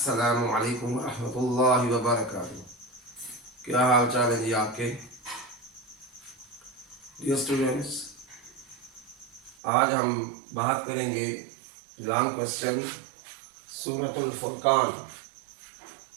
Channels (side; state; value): left; drops out; at 9.6 s